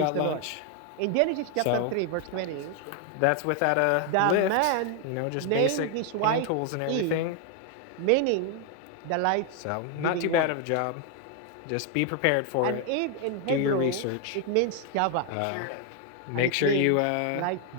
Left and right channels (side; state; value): both; different; correlation 0.00